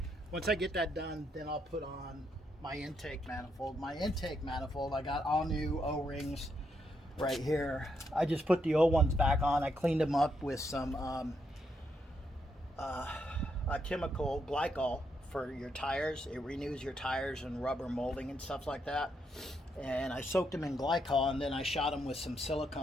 Once I get that done, then I'll put on my intake manifold. My intake manifold, I got all new O-rings right here. I just put the old ones back on. I cleaned them up with some a chemical glycol for your tires. It renews your tires and rubber molding and stuff like that. And I soaked them in glycol, and then I shot them with some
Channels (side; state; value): both; normal; correlation 0.78